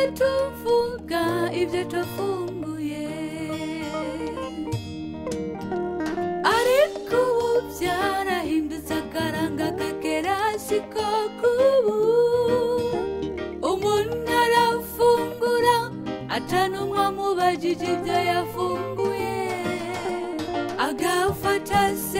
tuvuga ibyo twafunguye, ariko ubu byarahindutse akaranga kagera siko kubu. Umuntu arafungura atanumwe amubajije ibyo yafunguye, agafata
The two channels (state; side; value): identical; both; correlation 1.00